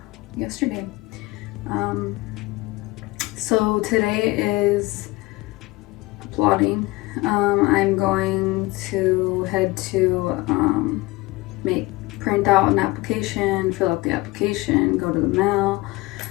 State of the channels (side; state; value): right; quieter; 21.3 dB